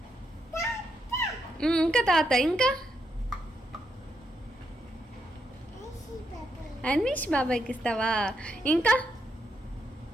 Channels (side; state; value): both; normal; correlation 0.80